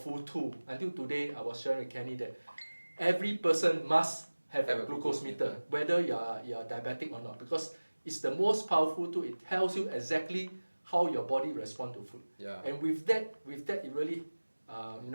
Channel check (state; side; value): inverted; both; correlation -1.00